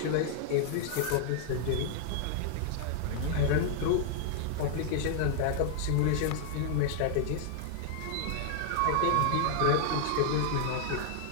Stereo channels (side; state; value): both; different; correlation 0.00